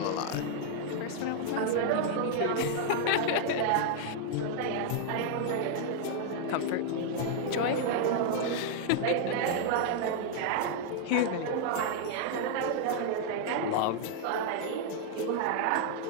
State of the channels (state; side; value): different; both; correlation -0.01